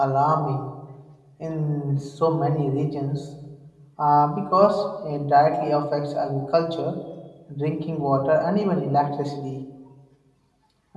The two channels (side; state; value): both; identical; correlation 1.00